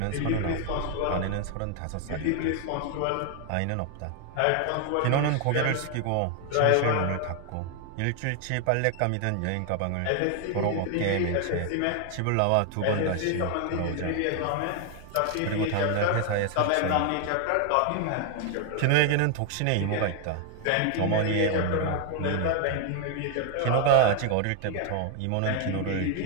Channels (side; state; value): both; different; correlation 0.00